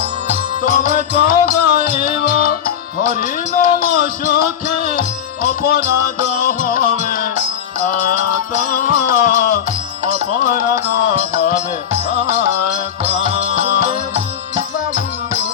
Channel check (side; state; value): right; quieter; 8.8 dB